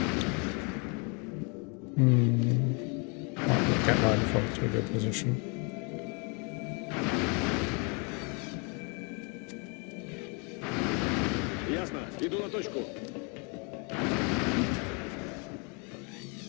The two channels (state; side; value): quieter; right; 34.3 dB